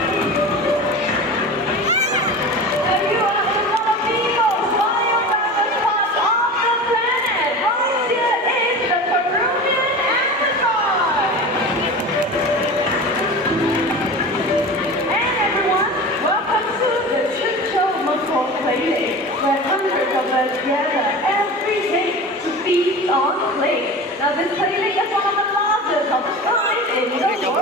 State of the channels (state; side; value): normal; both; correlation 0.32